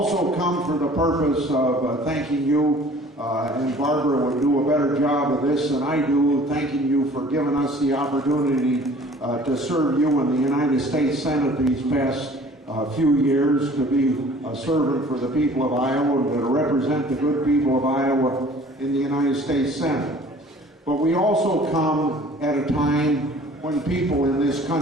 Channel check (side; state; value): both; normal; correlation 0.50